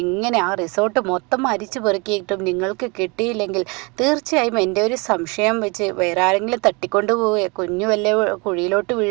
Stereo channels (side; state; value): left; quieter; 28.6 dB